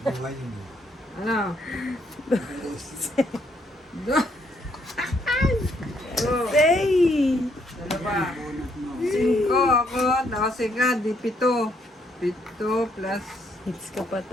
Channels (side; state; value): both; normal; correlation 0.71